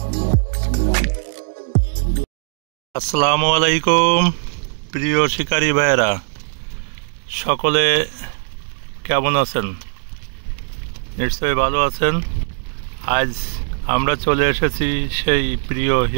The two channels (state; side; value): silent; left; 59 dB below the other